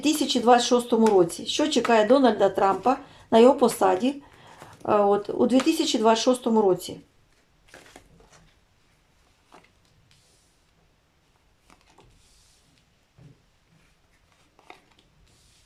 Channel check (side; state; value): both; identical; correlation 1.00